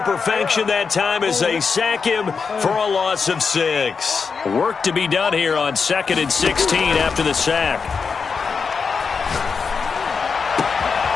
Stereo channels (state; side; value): quieter; right; 5.4 dB